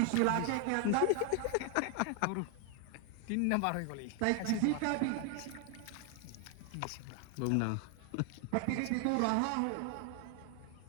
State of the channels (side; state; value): both; different; correlation 0.00